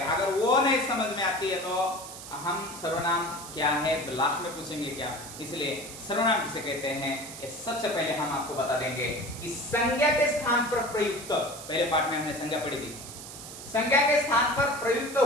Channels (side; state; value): right; noise; hiss, 12 dB below the sound